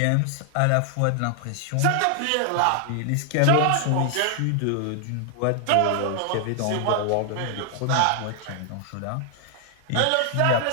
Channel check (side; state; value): both; different; correlation 0.00